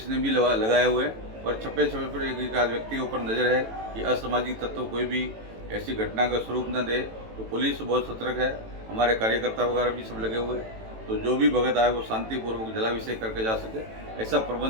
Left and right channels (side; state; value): left; late; 18 ms